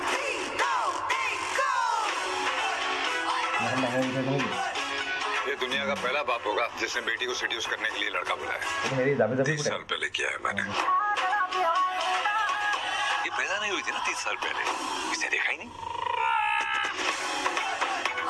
ये दुनिया का पहला बाप होगा जिसने बेटी को सेड्यूस करने के लिए लड़का बुलाया। 30 साल पहले किया है मैंने। ये पैदा नहीं हुई थी ना 30 साल पहले, इसे देखा ही नहीं।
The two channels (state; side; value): identical; both; correlation 1.00